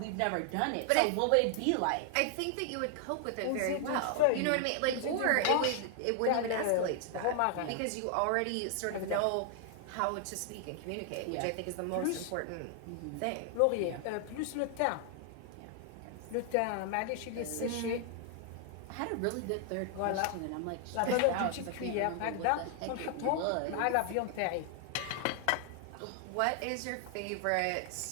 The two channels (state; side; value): different; both; correlation 0.00